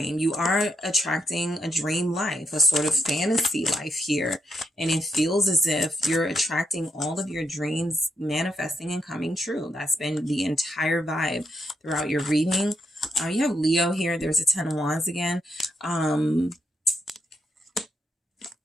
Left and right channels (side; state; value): both; normal; correlation 0.80